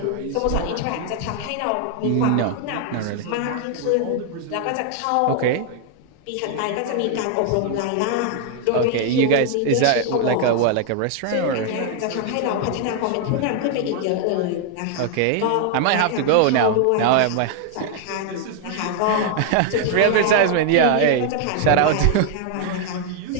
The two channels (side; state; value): both; different; correlation 0.00